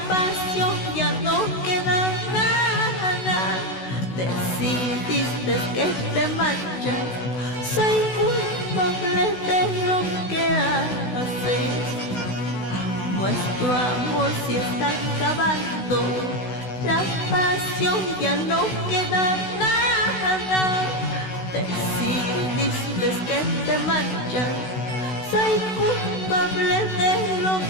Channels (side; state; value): right; late; 16 ms